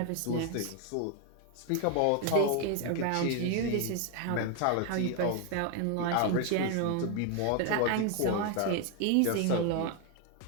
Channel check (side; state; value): both; different; correlation 0.01